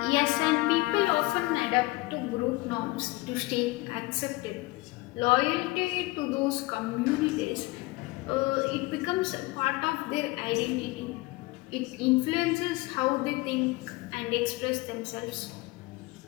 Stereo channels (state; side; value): quieter; right; 21.6 dB